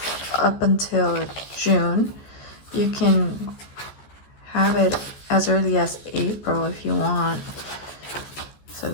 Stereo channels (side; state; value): right; late; 14 ms